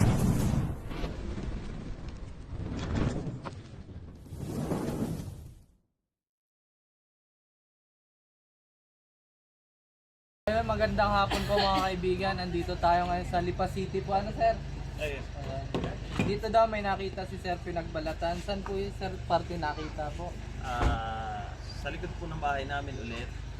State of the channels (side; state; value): both; identical; correlation 1.00